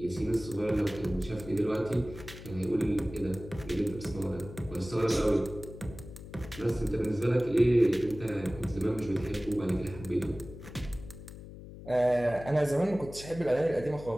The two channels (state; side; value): noise; left; hum, 14 dB below the sound